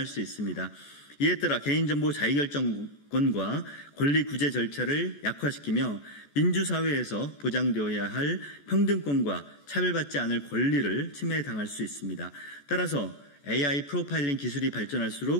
수 있습니다. 이에 따라 개인정보 자유결정권과 권리 구제 절차를 약화시키며 민주사회에서 보장되어야 할 평등권과 차별받지 않을 권리를 침해당할 수 있습니다. 따라서 AI 프로파일링 기술이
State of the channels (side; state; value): right; late; 14 ms